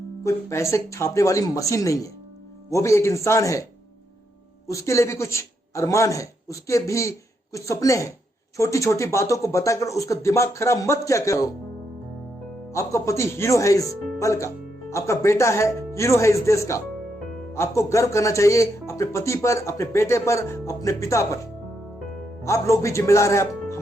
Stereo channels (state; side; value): normal; both; correlation 0.80